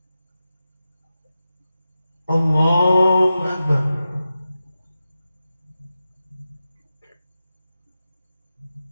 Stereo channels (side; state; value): both; inverted; correlation -0.91